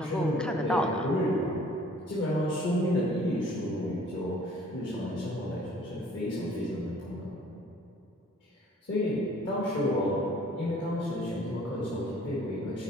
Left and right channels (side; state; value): both; normal; correlation 0.55